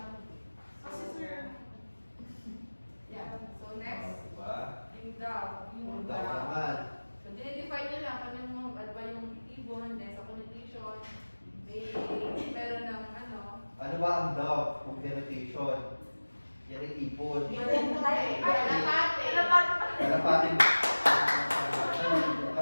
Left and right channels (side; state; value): both; inverted; correlation -1.00